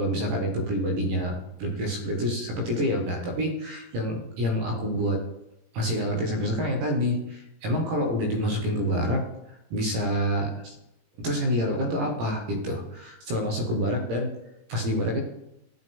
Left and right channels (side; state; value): left; late; 17 ms